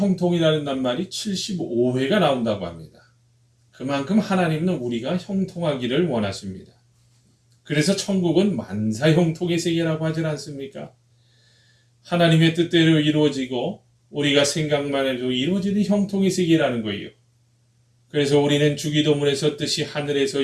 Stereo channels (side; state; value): both; identical; correlation 1.00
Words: 낱말이 75회가 나온다고 합니다. 그만큼 하나님은 우리가 형통하기를 원하십니다. 그래서 천국은 만사형통의 세계라고 하지 않습니까? 하나님의 뜻대로 이루어지고 우리가 생각만 해도 이루어지는 형통의 세계라는 거예요. 그래서 우리는 주기도문에서 뜻이 하늘에서